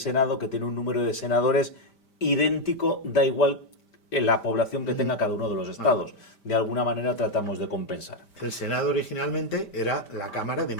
que tiene un número de senadores idéntico, da igual la población que tenga cada uno de los estados. De alguna manera tratamos de compensar. El Senado originalmente era la Cámara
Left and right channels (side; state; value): right; late; 5.1 ms